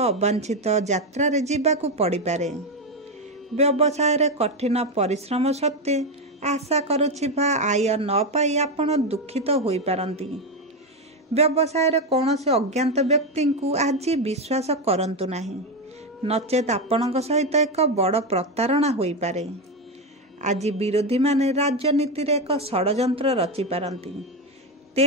यात्रा रे जीवाकू पड़ी पारे। व्यवसाय रे कठिन परिश्रम सत्वे आशा करुथिबा आय न पाई आपण दुखित होई पारंती। व्यवसाय रे कौनसी अज्ञात व्यक्ति को आज विश्वास करंतु नाही, नचेत आपणक सहित एक बड़ प्रतारणा होई पारे। आज विरोधी माने राजनीति रे एक षडयंत्र रचि पारंती।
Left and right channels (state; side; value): normal; both; correlation 0.10